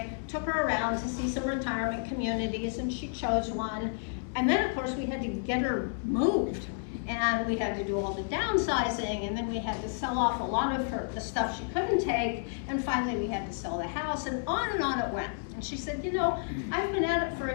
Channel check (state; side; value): silent; right; digital silence